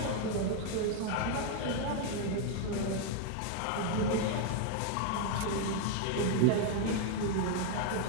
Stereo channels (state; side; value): different; both; correlation 0.00